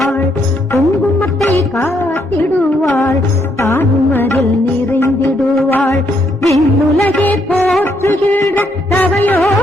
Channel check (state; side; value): normal; both; correlation 0.74